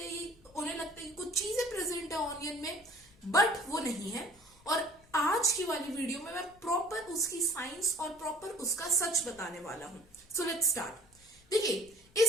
कि कुछ चीजें प्रेजेंट है ऑनियन में, बट वो नहीं है। और आज की वाली वीडियो में मैं प्रॉपर उसकी साइंस और प्रॉपर उसका सच बताने वाला हूं। So let's start. देखिए,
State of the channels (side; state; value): left; noise; rumble, 28 dB below the sound